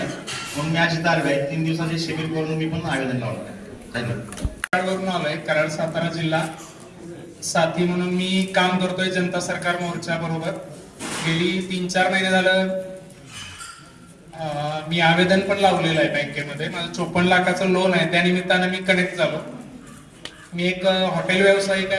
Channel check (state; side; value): identical; both; correlation 1.00